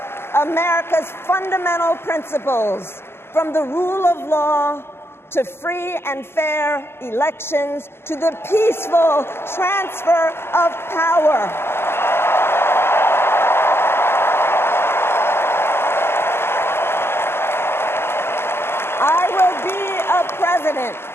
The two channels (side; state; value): right; late; 0.12 ms